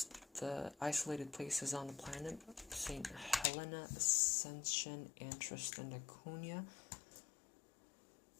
the isolated places on the planet: St. Helena, Ascension, Antris, and Laconia.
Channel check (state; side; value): drops out; right; at 3.5 s